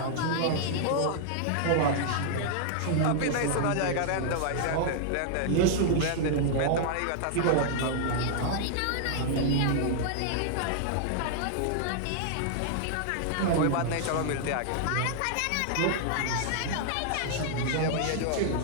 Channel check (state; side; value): different; both; correlation -0.01